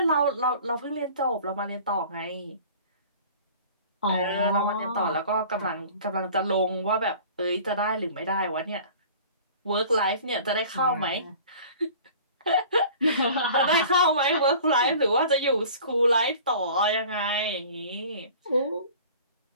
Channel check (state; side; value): inverted; both; correlation -0.45